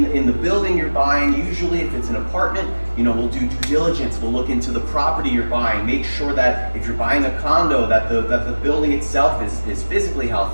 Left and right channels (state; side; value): inverted; both; correlation -1.00